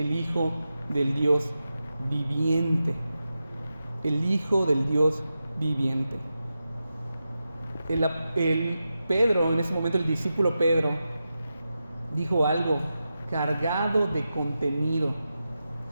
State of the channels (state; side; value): inverted; both; correlation -0.90